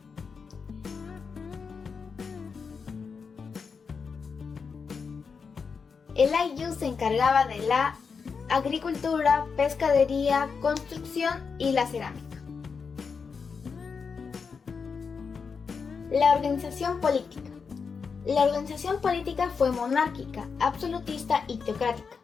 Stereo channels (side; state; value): right; quieter; 5.5 dB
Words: El ayllu se encargaba de la agricultura, pescadería, construcción y la cerámica. La organización política. La organización política fue monárquica, absolutista y teocrática.